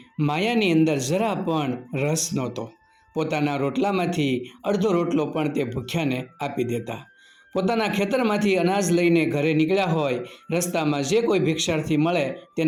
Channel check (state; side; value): identical; both; correlation 1.00